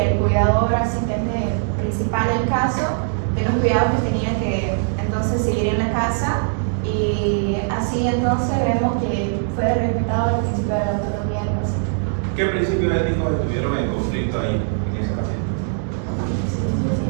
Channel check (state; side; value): silent; left; digital silence